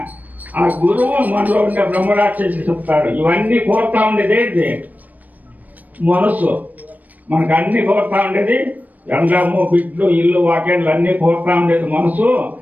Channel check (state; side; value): late; left; 0.079 ms